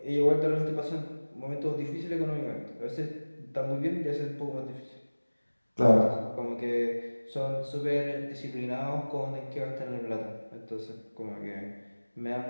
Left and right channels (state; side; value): inverted; both; correlation -1.00